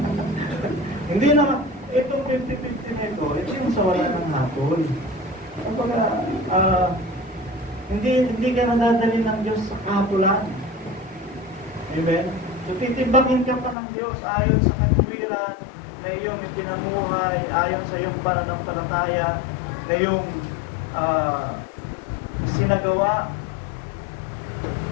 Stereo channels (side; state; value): right; drops out; at 13.8 s